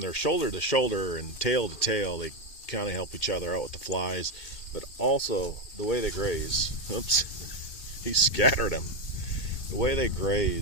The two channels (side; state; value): right; late; 2.4 ms